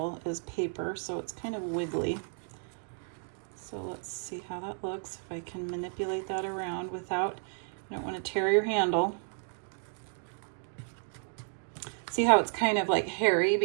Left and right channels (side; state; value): left; silent; 56 dB below the other